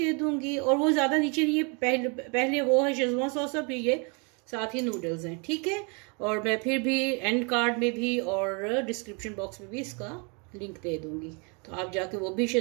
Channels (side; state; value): left; quieter; 34.1 dB